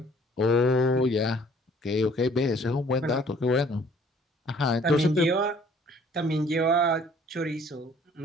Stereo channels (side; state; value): both; normal; correlation 0.57